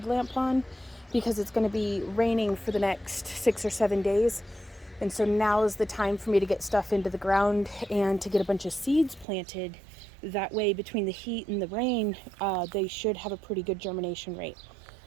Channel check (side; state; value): left; drops out; at 9.2 s